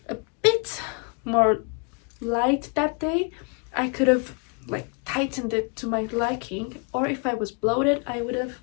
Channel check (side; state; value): right; quieter; 35.8 dB